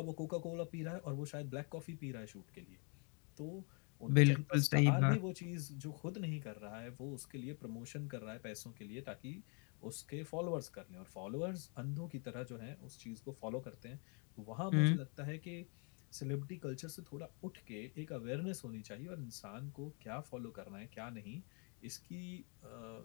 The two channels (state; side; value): quieter; right; 37.4 dB